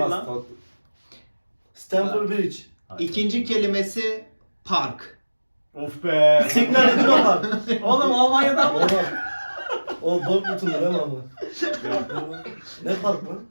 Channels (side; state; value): both; inverted; correlation -1.00